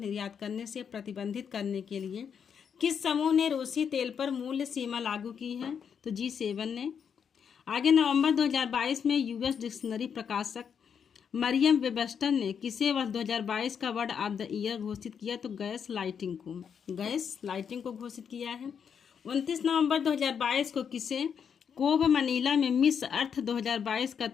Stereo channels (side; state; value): right; quieter; 7.3 dB